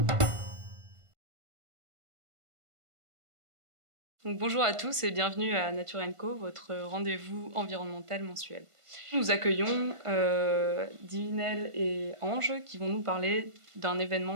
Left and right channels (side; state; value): left; late; 1.5 ms